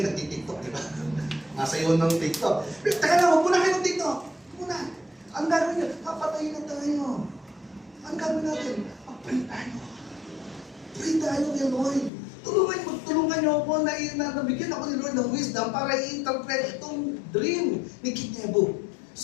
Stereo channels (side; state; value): right; drops out; at 12.1 s